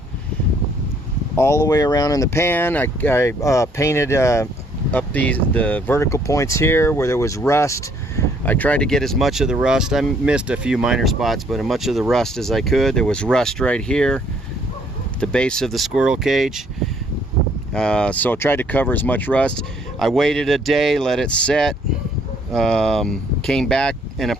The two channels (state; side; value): normal; both; correlation 0.64